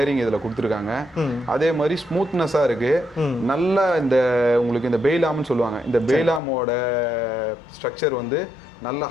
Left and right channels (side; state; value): right; drops out; at 6.4 s